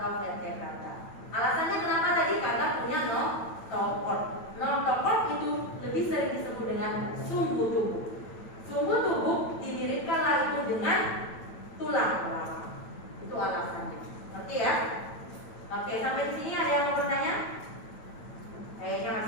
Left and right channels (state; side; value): late; right; 9.0 ms